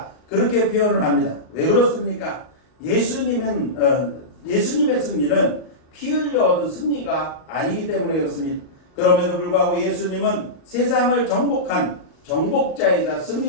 그렇게 표현을 합니다. 왜 그렇습니까? 예수님의 승리는 피 흘려 얻은 승리가 아니기 때문에 그렇습니다. 그럼에도 불구하고 예수님은 세상을 정복한 정복자이자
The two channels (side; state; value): right; late; 38 ms